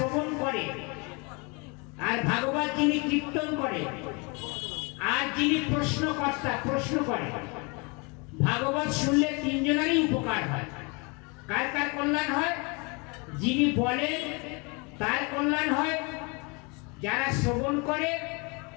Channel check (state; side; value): quieter; right; 30.5 dB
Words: করে আর ভাগবত যিনি কীর্তন করে আর যিনি প্রশ্নকর্তা প্রশ্ন করে, ভাগবত শুনলে তিনজনেরই উপকার হয়। কার কার কল্যাণ হয়? যিনি বলেন তার কল্যাণ হয়, যারা শ্রবণ করে